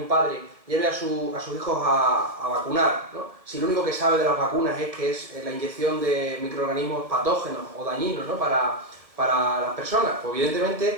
padre lleve a sus hijos a vacunar, ¿no? Si lo único que sabe de las vacunas es que es la inyección de microorganismos patógenos o dañinos, ¿no? para las personas? Pues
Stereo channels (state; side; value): late; left; 1.6 ms